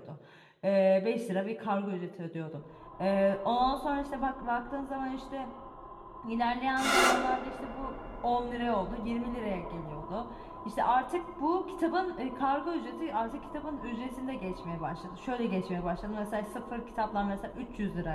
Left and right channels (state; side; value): identical; both; correlation 1.00